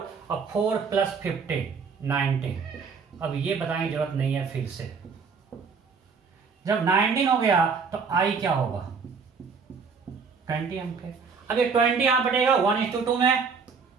और 4 प्लस 15 19. अब ये बताने की जरूरत नहीं है फिर से. जब 19 हो गया तो आई क्या होगा, 20 एम्पियर. अब ये 20 यहां बढ़ेगा 1:2 में,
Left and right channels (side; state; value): left; quieter; 5.5 dB